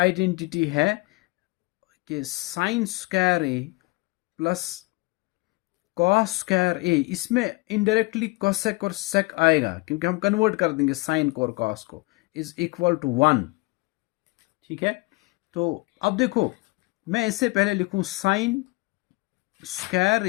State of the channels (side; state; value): right; quieter; 25.1 dB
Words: है कि sine square A plus cos square ए, इसमें इनडायरेक्टली कोसेक और सेक आएगा क्योंकि हम कन्वर्ट कर देंगे साइन को और कॉस को, इज इक्वल टू 1, ठीक है। तो अब देखो मैं इससे पहले लिखूं sine square